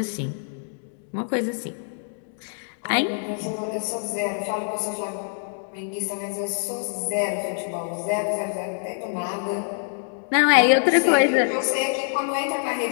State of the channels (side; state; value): right; silent; digital silence